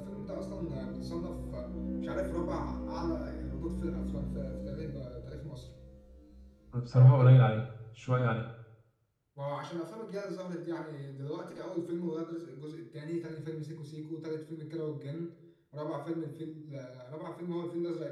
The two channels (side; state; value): both; identical; correlation 1.00